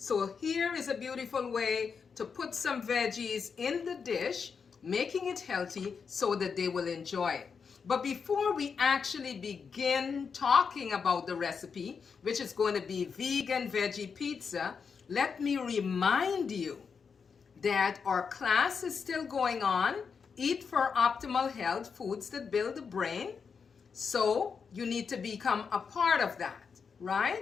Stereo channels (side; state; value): right; quieter; 5.9 dB